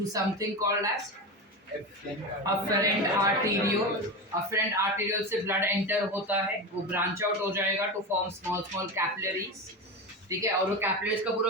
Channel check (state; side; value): normal; both; correlation 0.22